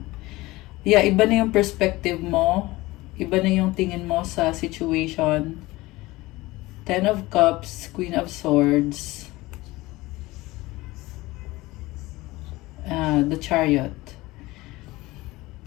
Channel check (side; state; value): right; quieter; 20.0 dB